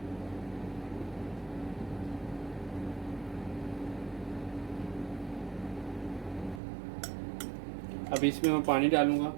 अब इसमें मैं पानी डालूँगा।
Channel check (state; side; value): drops out; left; at 6.6 s